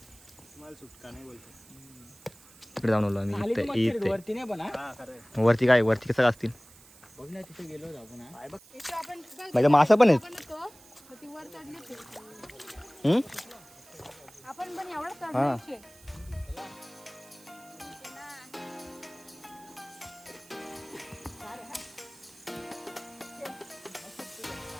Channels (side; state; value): right; noise; hiss, 23 dB below the sound